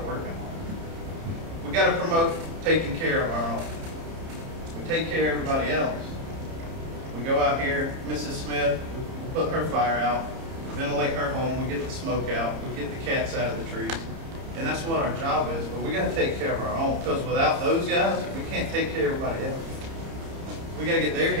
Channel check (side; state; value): left; late; 30 ms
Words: working on it. We got to promote taking care of our own. We take care of everybody else. We go out here, Mrs. Smith, we put her fire out, we ventilate her home, we get the smoke out, we get the cats out of the trees. And that's what our job is, but we got to take care of our own, because without those guys, we can't take care of everybody else. We got to get their